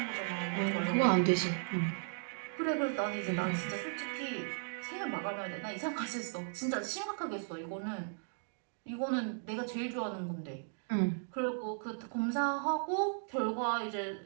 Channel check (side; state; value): left; silent; digital silence